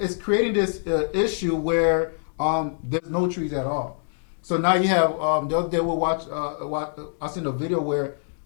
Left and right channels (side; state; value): right; silent; digital silence